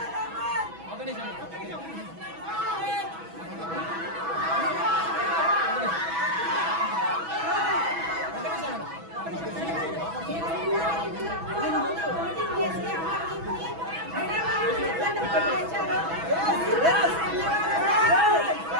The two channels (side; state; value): left; late; 6.1 ms